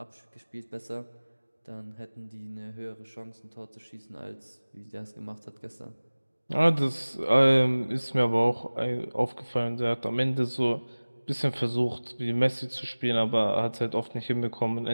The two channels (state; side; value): inverted; both; correlation -1.00